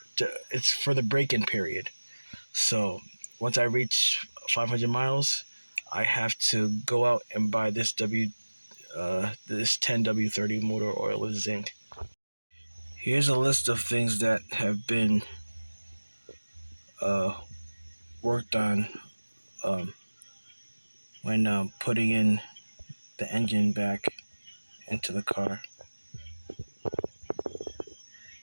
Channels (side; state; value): both; inverted; correlation -1.00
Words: it's for the break-in period. So once I reach 500 miles, I have to go out and buy this 10W30 motor oil with zinc. Here's a list of things that have been uh, worked on um, when putting in the engine back into the car.